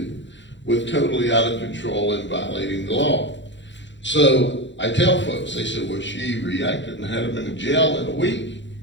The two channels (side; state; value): right; late; 0.53 ms